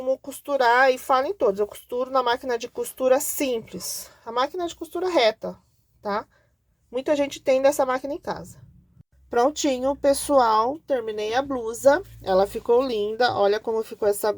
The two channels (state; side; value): identical; both; correlation 1.00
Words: costurar e falo em todos. Eu costuro na máquina de costura simples. A máquina de costura reta, tá? Muita gente tem dessa máquina em casa. Prontinho, pessoal. Terminei a blusa. Ela ficou linda. Olha como ficou essa